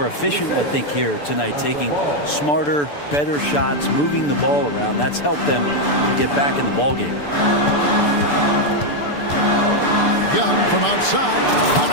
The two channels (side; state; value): right; late; 6.9 ms